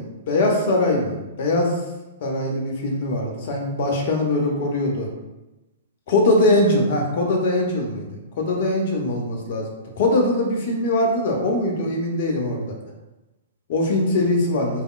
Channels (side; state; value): both; inverted; correlation -0.33